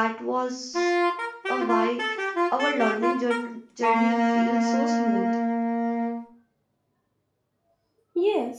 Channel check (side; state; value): both; identical; correlation 1.00